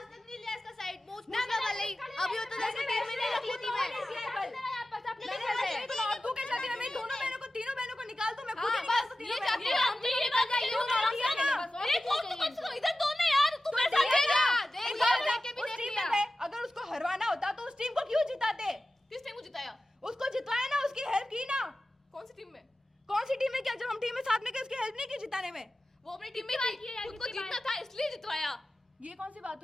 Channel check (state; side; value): normal; both; correlation 0.95